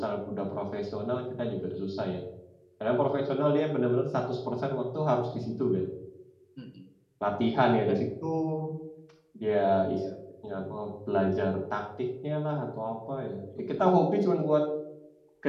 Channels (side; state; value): both; identical; correlation 1.00